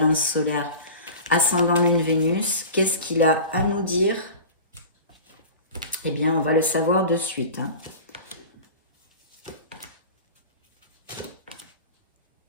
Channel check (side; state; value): both; inverted; correlation -0.35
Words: solaires ascendant Lune Vénus. Qu'est-ce qu'il a à nous dire? Eh bien, on va le savoir de suite. Hein.